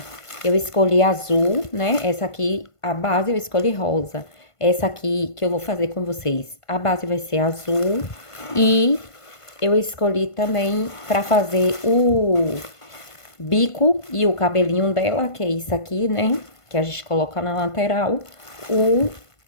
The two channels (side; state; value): right; late; 1.5 ms